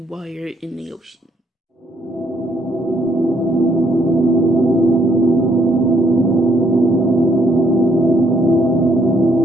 while you're in the ocean.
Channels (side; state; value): both; normal; correlation 0.70